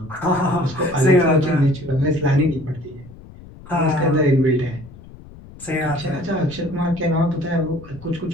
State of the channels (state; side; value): noise; left; rumble, 18 dB below the sound